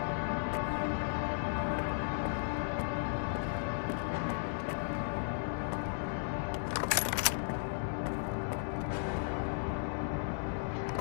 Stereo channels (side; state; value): right; silent; digital silence